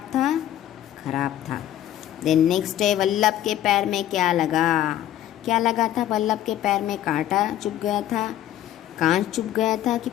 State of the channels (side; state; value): right; quieter; 12.3 dB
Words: था? खराब था। देन नेक्स्ट डे वल्लभ के पैर में क्या लगा था? वल्लभ के पैर में कांटा चुभ गया था, कांच चुभ गया था कि